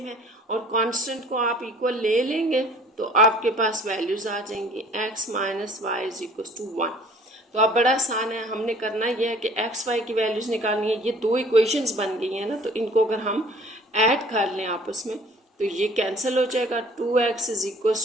है और कांस्टेंट को आप इक्वल ले लेंगे तो आपके पास वैल्यूज आ जाएंगी x minus Y is equal to 1। तो अब बड़ा आसान है, हमने करना यह है कि एक्स वाई की वैल्यूज निकालनी है। ये 2 इक्वेशंस बन गई हैं ना, तो इनको अगर हम ऐड कर लें आपस में तो ये कैंसिल हो जाएगा, 2x इज इक्वल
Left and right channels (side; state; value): both; normal; correlation 0.52